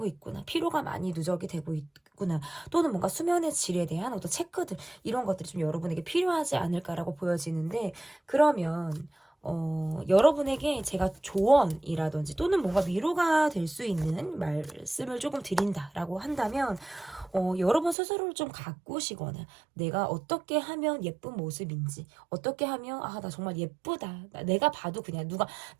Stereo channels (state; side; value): drops out; left; at 17.9 s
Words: 있구나. 피로가 많이 누적이 되고 있구나. 또는 뭔가 수면의 질에 대한 어떤 체크들, 이런 것들이 좀 여러분에게 필요하지 않을까라고 보여지는데, 그러면 여러분에게 제가 조언이라든지 또는 뭔가 위로가 될 수 있는 말씀을 조금 드린다라고 한다면, 여러분 스스로를 좀 가꾸시거나 내가 어떻게 하면 예쁜 모습인지, 어떻게 하면 나 정말 예쁘다, 내가 봐도 그냥 누가